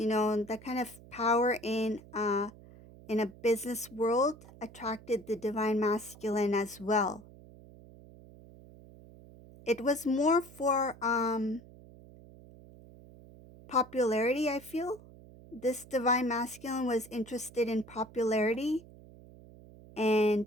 kind of power in a business world attracted the divine masculine as well. It was more for popularity, I feel. This divine masculine was interested in popularity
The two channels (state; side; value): noise; right; hum, 20 dB below the sound